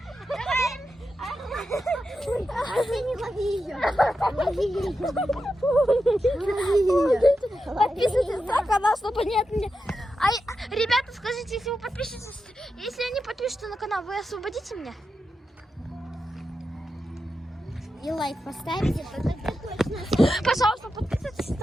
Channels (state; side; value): normal; both; correlation 0.89